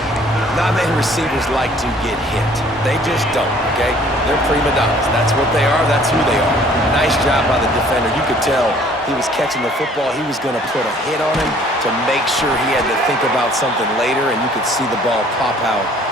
Not many receivers like to get hit. They just don't, okay? They're prima donnas. That's what they are. That's who they are. Nice job by the defender. You could tell he was catching the football. He was going to put a hit on him to make sure he had to think about something later, and you could see the ball pop out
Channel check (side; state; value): both; normal; correlation 0.56